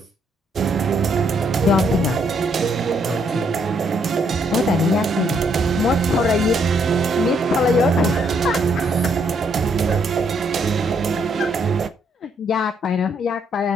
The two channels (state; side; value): normal; both; correlation 0.72